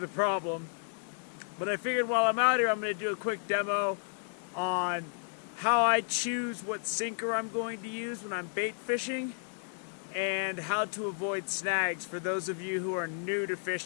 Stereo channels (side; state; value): right; silent; 56 dB below the other